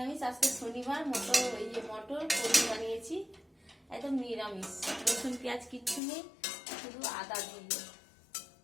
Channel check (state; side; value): drops out; right; at 6.0 s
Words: আজকে শনিবার, মটর পনির বানিয়েছি, একদম নিরামিষ, রসুন পেঁয়াজ কিচ্ছু নেই, শুধু আদা দিয়ে।